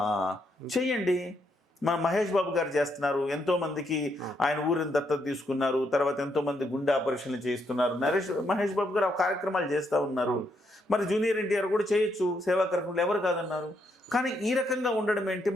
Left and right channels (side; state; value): both; normal; correlation 0.77